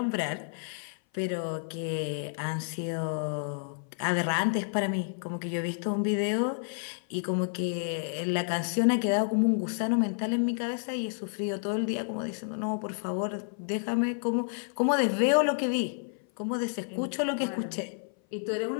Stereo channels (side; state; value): right; silent; 56 dB below the other